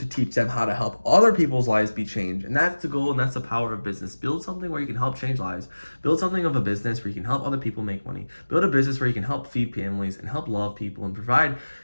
teach them how to help other people's lives be changed. And that's the goal, and that's the power of business. Build something where you can help change lives. Build something of a business where you can help other people make money. Build a business where you can help feed families and help love people and provide,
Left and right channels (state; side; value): inverted; both; correlation -1.00